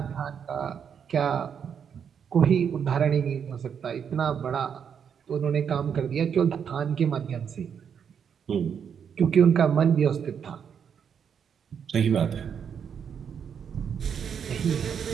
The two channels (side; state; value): left; quieter; 7.5 dB